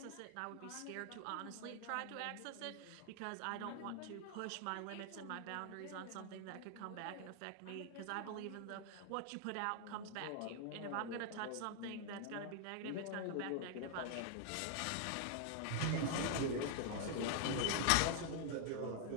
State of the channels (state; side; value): different; both; correlation 0.00